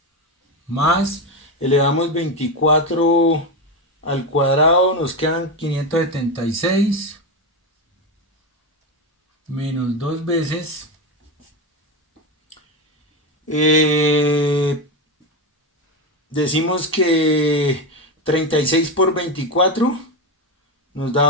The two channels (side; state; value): both; normal; correlation 0.14